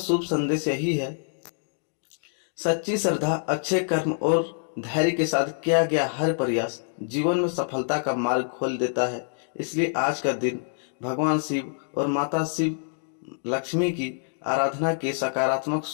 संदेश यही है, सच्ची श्रद्धा, अच्छे कर्म और धैर्य के साथ किया गया हर प्रयास जीवन में सफलता का मार्ग खोल देता है। इसलिए आज का दिन भगवान शिव और माता शिव लक्ष्मी की आराधना की सकारात्मक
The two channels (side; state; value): right; silent; digital silence